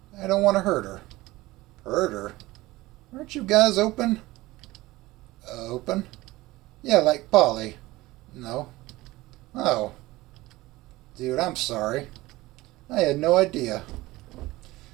I don't want to hurt her. Hurt her? Aren't you guys open? Open? Yeah, like Polly. No. Oh. Dude, I'm sorry. I had no idea.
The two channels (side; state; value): left; quieter; 19.1 dB